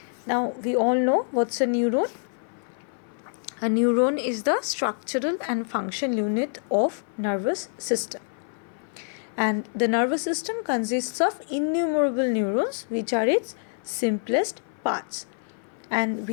Now, we all know what's a neuron. A neuron is the structural and function unit of nervous system. And the nervous system consists of innumerable neurons, which are its simplest parts. And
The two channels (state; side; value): silent; right; 57 dB below the other